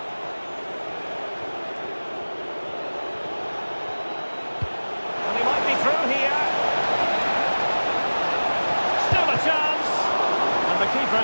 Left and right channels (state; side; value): inverted; both; correlation -1.00